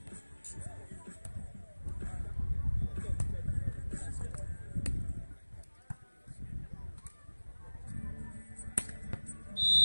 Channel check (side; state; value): both; inverted; correlation -1.00